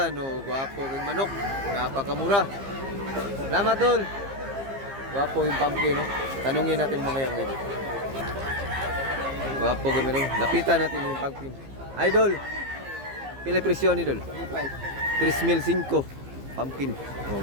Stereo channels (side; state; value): left; late; 15 ms